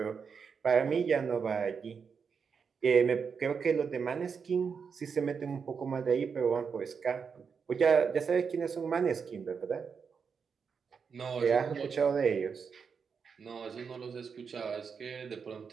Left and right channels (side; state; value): left; quieter; 6.0 dB